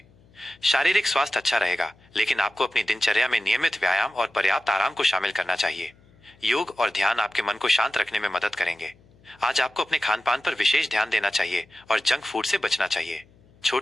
शारीरिक स्वास्थ्य अच्छा रहेगा, लेकिन आपको अपनी दिनचर्या में नियमित व्यायाम और पर्याप्त आराम को शामिल करना चाहिए। योग और ध्यान आपके मन को शांत रखने में मदद करेंगे। आज आपको अपने खान पान पर विशेष ध्यान देना चाहिए और जंक फूड से बचना चाहिए।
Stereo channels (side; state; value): left; noise; hum, 29 dB below the sound